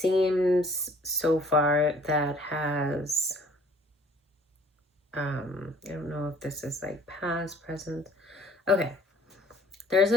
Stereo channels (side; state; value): both; normal; correlation 0.55